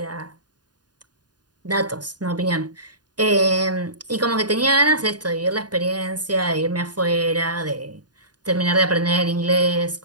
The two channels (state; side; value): late; left; 0.69 ms